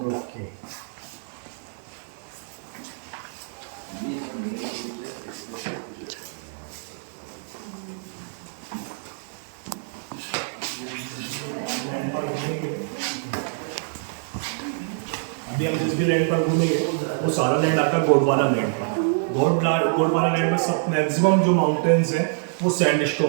ओके। अभी हम जिस भी लैंड पर घूमेंगे, वो सारा लैंड आता है गोंडवाना लैंड पर। गोंडवाना लैंड में सब मैक्सिमम जो माउंटेन्स हैं वो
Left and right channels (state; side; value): silent; left; digital silence